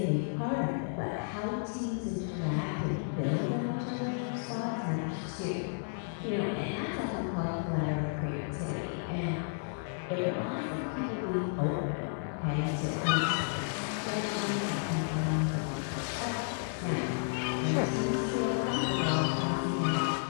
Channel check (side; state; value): right; silent; digital silence